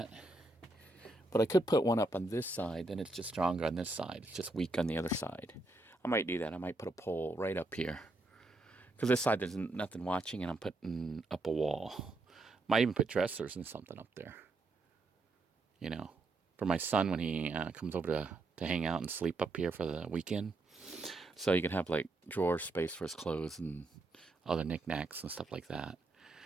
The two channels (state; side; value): quieter; left; 3.0 dB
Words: But I could put one up on this side, then it's just stronger on this side. It's just weak on the other side. I might do that. I might put a pole right up here. Because this side there's nothing watching, and I'm putting up a wall. Might even put dressers and something up there. You know, for my son when he comes over to hang out and sleep up here for the weekend. So you can have like drawer space for his clothes and other knickknacks and stuff like that.